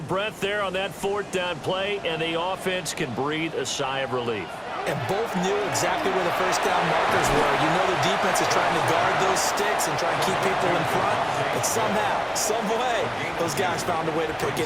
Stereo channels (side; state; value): both; identical; correlation 1.00